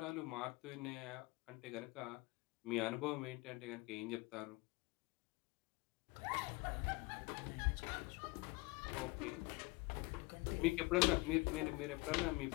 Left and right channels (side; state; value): right; quieter; 23.9 dB